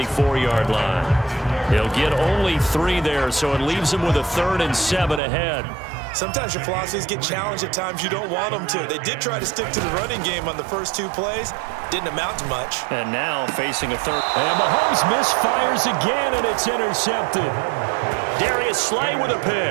line. He'll get only 3 there, so it leaves him with a 3rd and 7 ahead. Sometimes your philosophies get challenged at times you don't want them to. They did try to stick to the running game on the first 2 plays. Didn't amount to much. And now facing a 3rd. And Mahomes misfires again, and it's intercepted. Darius Slay with a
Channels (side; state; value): left; drops out; at 5.2 s